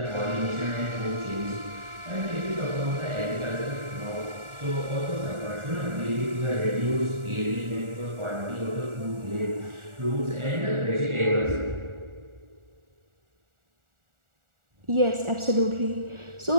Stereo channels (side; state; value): left; late; 1.4 ms